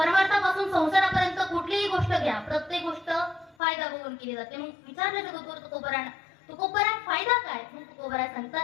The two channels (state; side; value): drops out; right; at 3.6 s